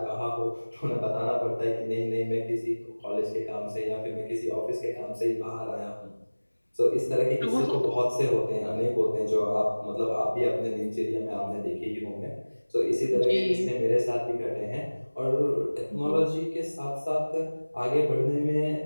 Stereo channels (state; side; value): inverted; both; correlation -1.00